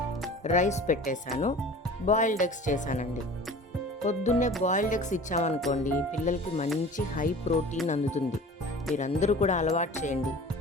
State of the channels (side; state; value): both; normal; correlation 0.41